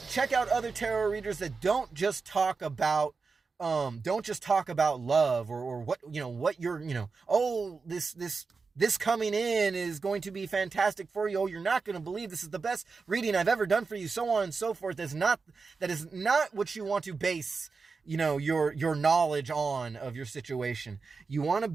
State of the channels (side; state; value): left; quieter; 4.6 dB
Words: Check out other tarot readers that don't just talk about love or what you're, this coming in is going to be fantastic for you. Oh, you're not going to believe this is the best reading I've ever done for you, so on and so forth. That is not what you want to base, your knowledge on of your situation. You want to